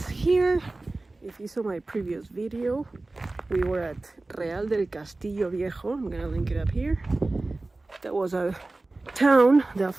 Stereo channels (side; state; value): left; quieter; 3.1 dB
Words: here. If you saw my previous video, we were at Real del Castillo Viejo. I'm gonna link it up here. That was a town that